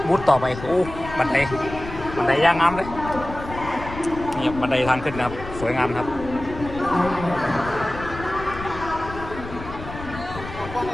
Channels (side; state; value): left; noise; rumble, 11 dB below the sound